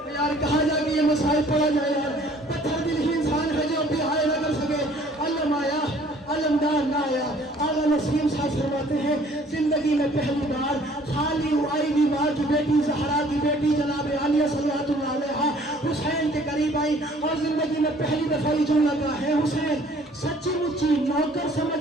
یار کہاں جا کے یہ مسائل پڑا جائے یار. پتھر دل ہی انسان ہے جو بھی آئے نہ کر سکے. علم آیا علمدار نہ آیا. آغا نسیم صاحب فرماتے ہیں زندگی میں پہلی بار خالی آئی بھی ماں کی بیٹی زہرا کی بیٹی جناب عالیہ صلوات اللہ علیہا حسین کے قریب آئی اور زندگی میں پہلی دفعہ یہ جملہ کہا ہے حسین سچی مچی نوکر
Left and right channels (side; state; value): both; normal; correlation 0.56